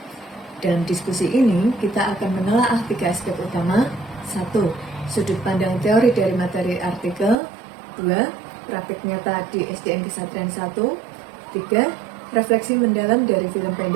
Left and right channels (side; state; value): left; drops out; at 7.4 s